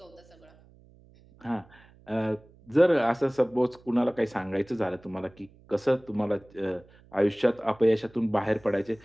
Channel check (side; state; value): right; noise; hum, 27 dB below the sound